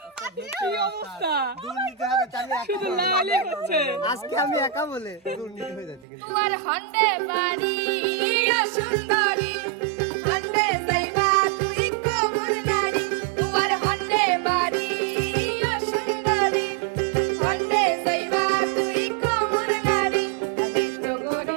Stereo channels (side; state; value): left; drops out; at 6.1 s